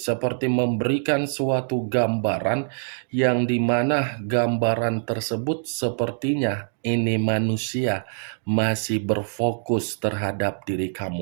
memberikan suatu gambaran yang dimana gambaran tersebut sepertinya ini manusia masih berfokus terhadap diri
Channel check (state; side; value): silent; left; digital silence